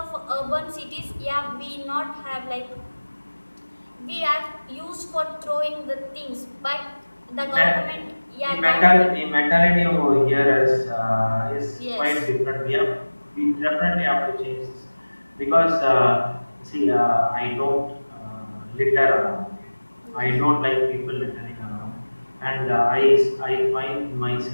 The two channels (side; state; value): both; inverted; correlation -1.00